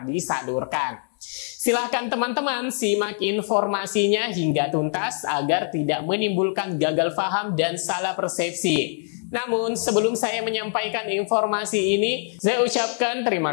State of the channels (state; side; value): silent; right; 63 dB below the other